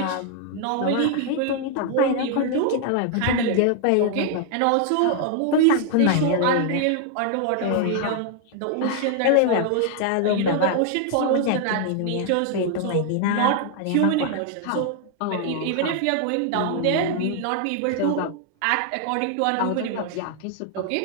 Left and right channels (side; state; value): both; different; correlation 0.00